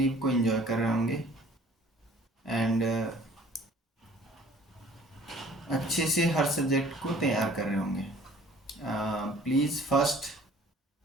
को एंजॉय कर रहे होंगे एंड अच्छे से हर सब्जेक्ट को तैयार कर रहे होंगे। प्लीज़ फर्स्ट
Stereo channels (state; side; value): normal; both; correlation 0.52